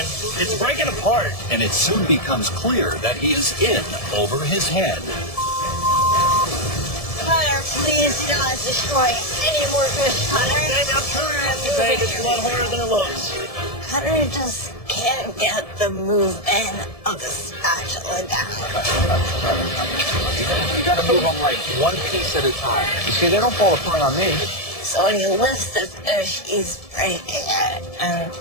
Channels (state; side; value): late; right; 1.7 ms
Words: It's breaking apart. And it soon becomes clear that he is in over his head. Cutter, please do not destroy any more fish, Cutter. Babe, it's a lot harder than it looks. Cutter just can't get the movement of the spatula down. You gotta move them like one piece at a time. You see, they don't fall apart on me. So when you lift the fish, he's breaking it. And